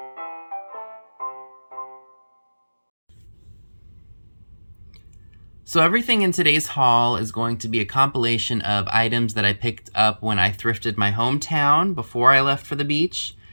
So everything in today's haul is going to be a compilation of items that I picked up when I thrifted my hometown before I left for the beach.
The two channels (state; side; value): inverted; both; correlation -1.00